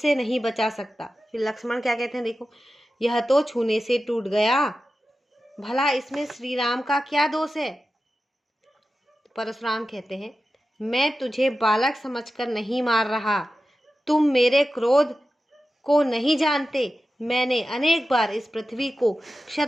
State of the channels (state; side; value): normal; both; correlation 0.93